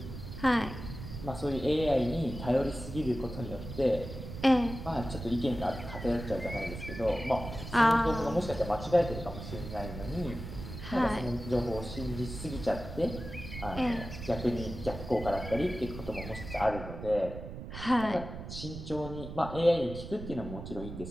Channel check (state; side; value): noise; right; rumble, 9 dB below the sound